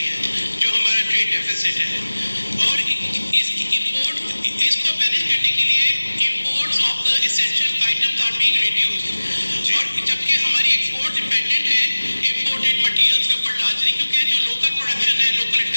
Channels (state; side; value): inverted; both; correlation -1.00